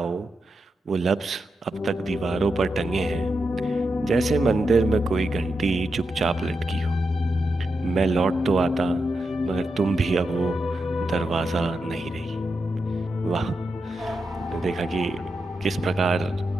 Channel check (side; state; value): both; normal; correlation 0.87